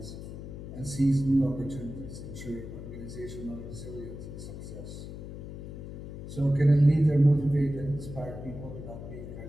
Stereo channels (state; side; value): noise; left; hum, 10 dB below the sound